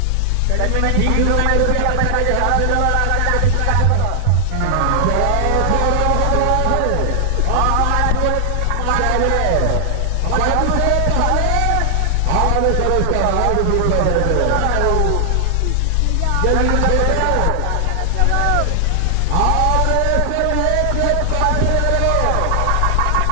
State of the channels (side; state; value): both; different; correlation -0.01